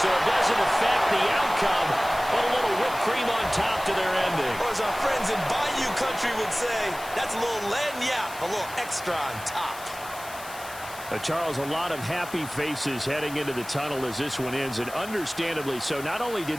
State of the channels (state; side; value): noise; left; hiss, 15 dB below the sound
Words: So it doesn't affect the outcome, but a little whipped cream on top to their ending. Or as our friends in Bayou Country would say, that's a little lagniappe, a little extra on top. Charles, a lot of happy faces heading into the tunnel as this one ends, and understandably so. Not only